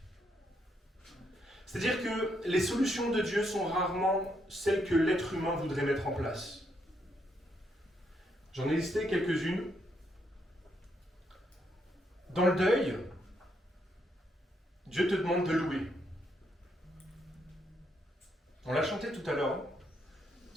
C'est-à-dire que les solutions de Dieu sont rarement celles que l'être humain voudrait mettre en place. J'en ai listé quelques-unes. Dans le deuil, Dieu te demande de louer. On l'a chanté tout à l'heure.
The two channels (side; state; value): both; normal; correlation 0.76